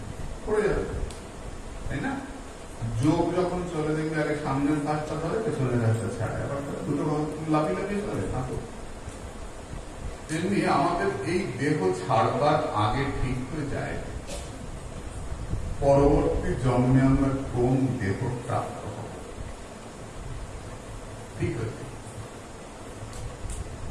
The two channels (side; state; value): both; identical; correlation 1.00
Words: পড়ে যাবে, তাই না? যোগ যখন চলে দেখবে আগে সামনের পাশটা ধরে, পেছনের পাশটা ছাড়ে, আবার দুটো লাফিয়ে লাফিয়ে চলে না তো। তেমনি আমাদের এই দেহ ছাড়বার আগে ঠিক হয়ে যায় পরবর্তী জন্মে আমরা কোন দেহ প্রাপ্ত হব, ঠিক আছে?